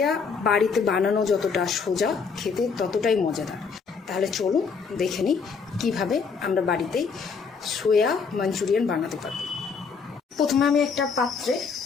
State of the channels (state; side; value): quieter; right; 5.5 dB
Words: বাড়িতে বানানো যতটা সোজা, খেতে ততটাই মজাদার। তাহলে চলুন দেখে নিই কীভাবে আমরা বাড়িতেই সোয়া মাঞ্চুরিয়ান বানাতে পারব। প্রথমে আমি একটা পাত্রে